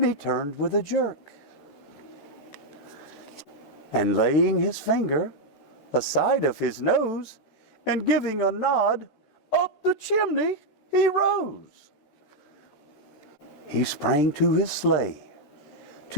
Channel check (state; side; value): late; right; 13 ms